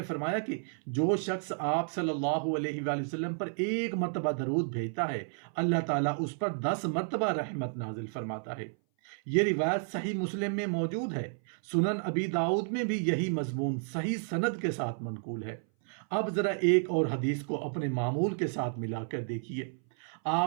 فرمایا کہ جو شخص آپ صلی اللہ علیہ وآلہ وسلم پر 1 مرتبہ درود بھیجتا ہے، اللہ تعالیٰ اس پر 10 مرتبہ رحمت نازل فرماتا ہے۔ یہ روایت صحیح مسلم میں موجود ہے، سنن ابی داؤد میں بھی یہی مضمون صحیح سند کے ساتھ منقول ہے۔ اب ذرا ایک اور حدیث کو اپنے معمول کے ساتھ ملا کر دیکھیے۔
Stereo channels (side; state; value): left; silent; 57 dB below the other